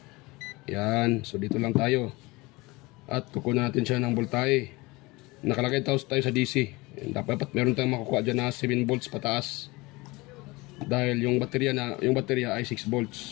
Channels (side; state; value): right; quieter; 23.0 dB